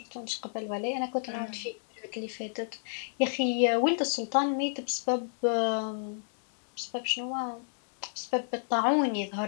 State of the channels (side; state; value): right; silent; digital silence